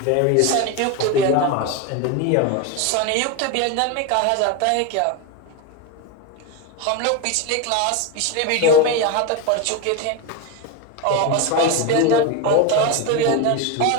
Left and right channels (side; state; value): both; different; correlation 0.03